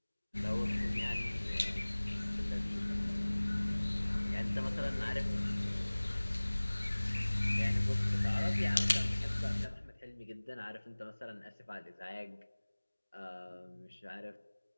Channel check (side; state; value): both; inverted; correlation -1.00